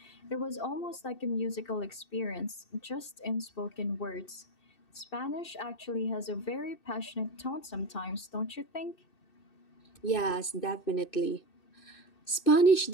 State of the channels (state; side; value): late; right; 2.6 ms